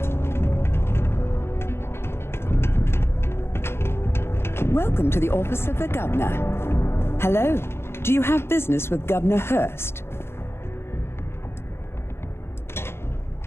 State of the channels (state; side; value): late; right; 0.12 ms